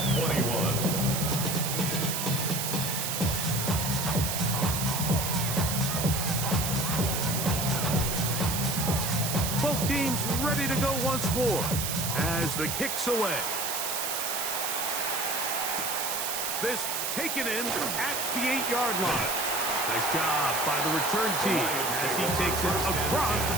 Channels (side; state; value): right; noise; hiss, 1 dB below the sound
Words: 21. Both teams ready to go once more as the kick's away. This taken in at the 8-yard line. Nice job by the return team as he takes it across the